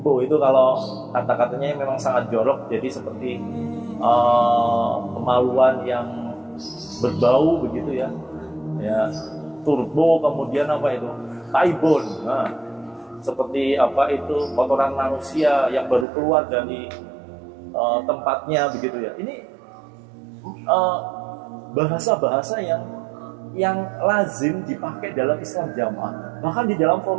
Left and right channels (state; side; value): drops out; left; at 16.1 s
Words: itu kalau kata-katanya memang sangat jorok, jadi seperti kemaluan yang berbau begitu, ya, ya, turbo, kemudian taibon, nah, seperti kotoran manusia yang baru keluar dari tempatnya begitu, ya. Ini bahasa-bahasa yang lazim dipakai dalam Islam Jamaah, bahkan di dalam